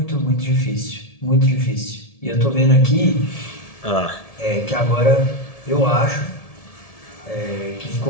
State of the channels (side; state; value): right; late; 1.7 ms